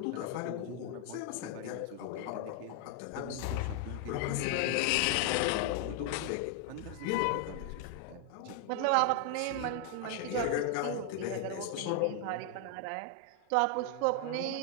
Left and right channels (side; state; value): both; different; correlation 0.00